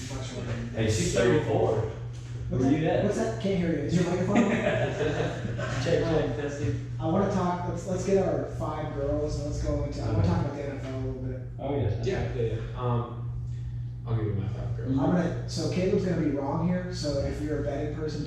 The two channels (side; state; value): both; identical; correlation 1.00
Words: much older. Hey, she's 34. What's Where you at? What's that? Can't hear you. Is your microphone? check, testing. I want to talk. Let's get our 5 girls and let's go into. I want to talk about the NFL a little bit. Oh yes. Yeah. I'll give you my 5 girls. So Caleb's gonna be wrong here. So if you're a betting person,